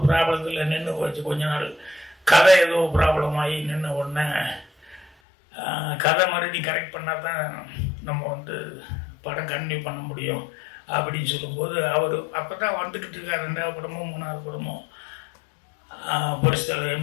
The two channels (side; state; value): right; drops out; at 5.1 s